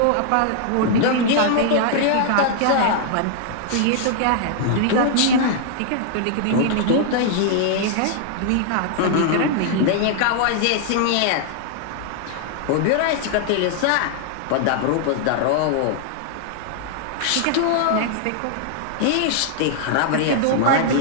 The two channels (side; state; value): both; different; correlation -0.01